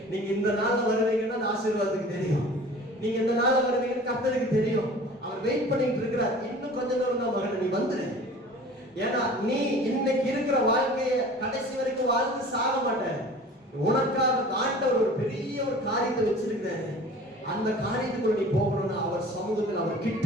நீங்க இந்த நாள்ல வருவீங்கன்னா அந்த ஆசீர்வாதத்துக்கு தெரியும், நீங்க இந்த நாள்ல வருவீங்கன்னு கர்த்தருக்கு தெரியும். அவர் வெயிட் பண்ணிட்டு இருக்கிறார். இன்னும் கொஞ்ச நேரம் தான் மகன், நீ வந்துரு. ஏன்னா நீ இன்னைக்கு இருக்கிற வாழ்க்கைய கடைசி வரைக்கும் வாழ்ந்து சாக மாட்டேன். உனக்காக ஆண்டவர் ஒரு பெரிய ஒரு காரியத்தை வச்சிருக்கிறாரு. அந்த காரியத்துக்குள்ள நீ போகணும்னா அவர் சமூகத்தில் அவர் கிட்ட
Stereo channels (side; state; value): both; normal; correlation 0.43